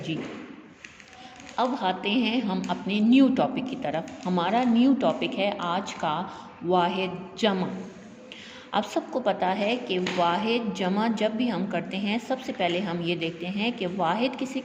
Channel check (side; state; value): both; identical; correlation 1.00